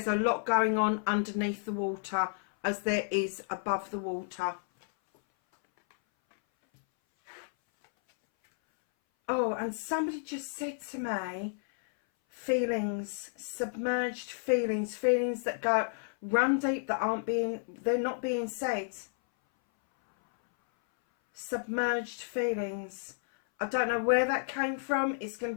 a lot going on underneath the water as there is above the water. Oh, and somebody just said to me, feelings, submerged feelings, feelings that go run deep, that they're not being said. Submerged feelings. I don't know where that came from. It's going to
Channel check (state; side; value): silent; right; 57 dB below the other